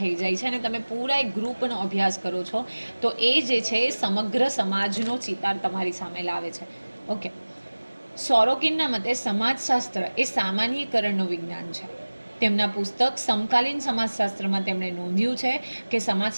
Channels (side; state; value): both; inverted; correlation -1.00